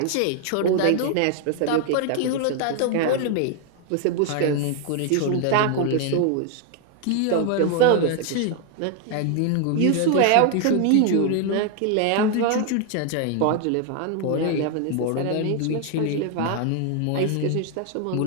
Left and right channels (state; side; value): different; both; correlation 0.00